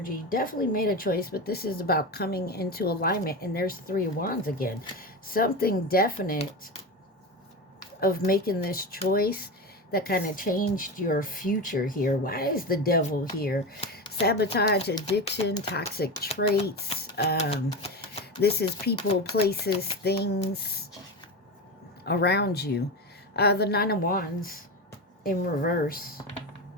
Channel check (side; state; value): both; normal; correlation 0.21